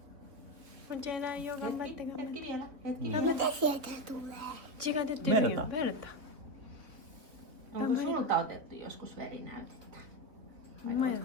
Kuinka eläin jo, gambatte, gambatte. Hetki vielä. Hetki. mitä sieltä tulee? 血が出てるよ。Verta. ベルタ。 Onko sulta otettu joskus verinäytettä? Vai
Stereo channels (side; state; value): left; late; 3.3 ms